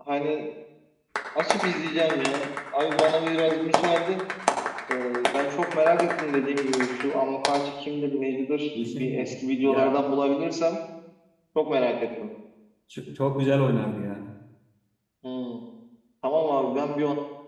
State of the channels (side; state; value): both; identical; correlation 1.00